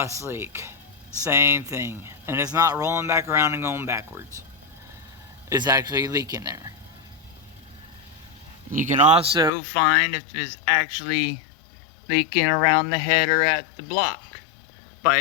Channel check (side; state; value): right; drops out; at 9.5 s